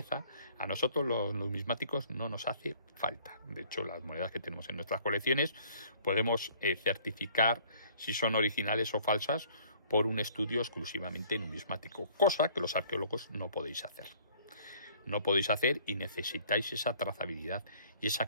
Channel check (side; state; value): both; inverted; correlation -0.57